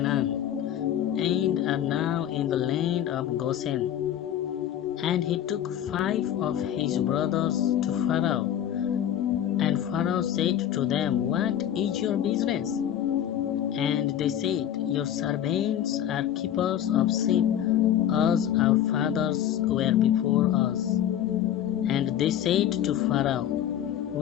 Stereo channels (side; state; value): right; quieter; 10.7 dB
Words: and are now in the land of Goshen. And he took 5 of his brothers to Pharaoh. And Pharaoh said to them, What is your business? And they said, Your servants are keepers of sheep, as our fathers were before us. And they said to Pharaoh,